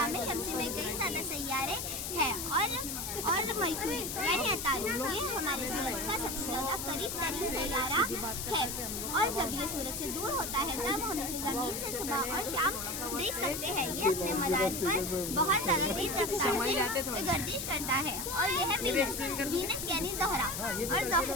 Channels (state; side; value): noise; left; hiss, 4 dB below the sound